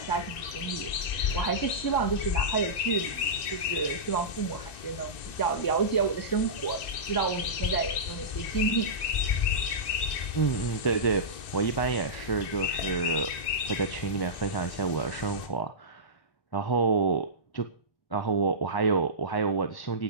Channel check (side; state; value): right; late; 1.9 ms